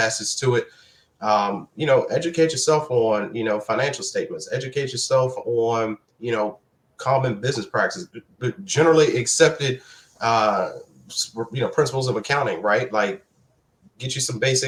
to it. Educate yourself on, financial statements, educate yourself on, common business practices, generally accepted, principles of accounting, right? Like get you some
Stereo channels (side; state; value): both; identical; correlation 1.00